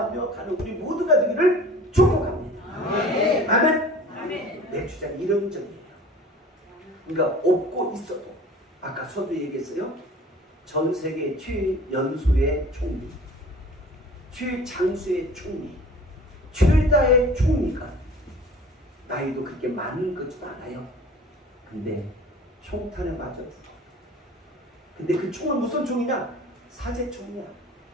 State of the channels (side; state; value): both; normal; correlation 0.44